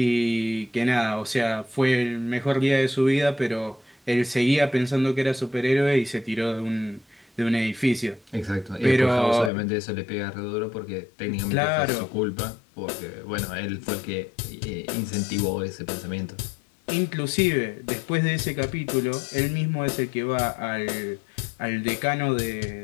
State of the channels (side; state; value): right; drops out; at 9.5 s